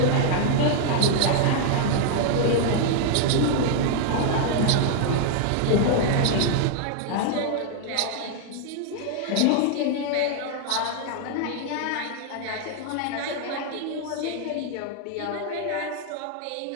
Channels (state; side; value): different; both; correlation 0.00